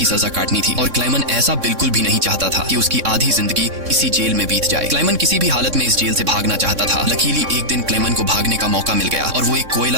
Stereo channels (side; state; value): left; late; 3.6 ms